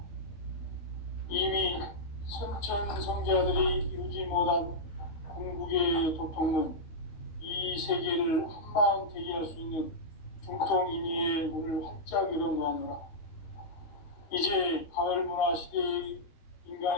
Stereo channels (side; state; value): right; late; 13 ms